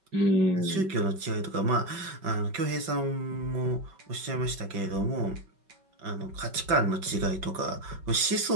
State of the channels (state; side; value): late; left; 5.3 ms